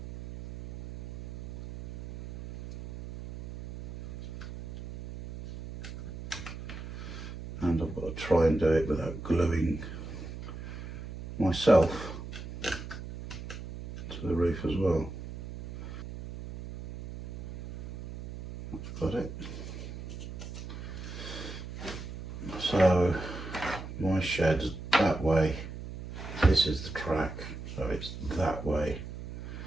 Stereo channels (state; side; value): noise; right; hum, 10 dB below the sound